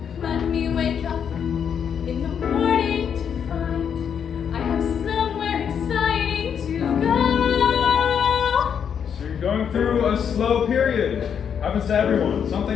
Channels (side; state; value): right; quieter; 7.8 dB